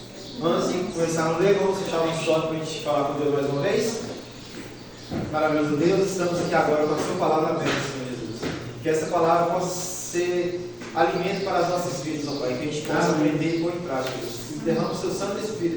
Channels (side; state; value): both; identical; correlation 1.00